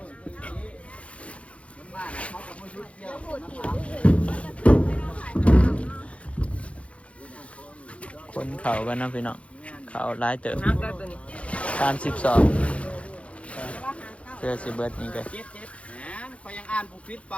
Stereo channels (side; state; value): right; late; 0.062 ms